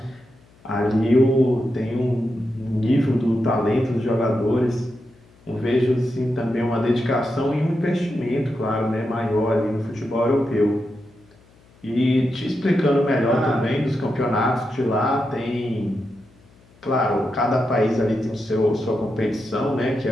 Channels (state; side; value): noise; left; hum, 29 dB below the sound